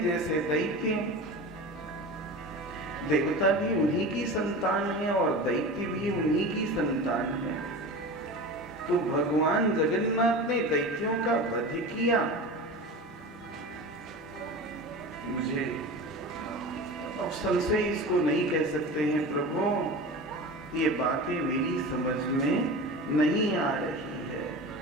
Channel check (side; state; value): both; normal; correlation 0.31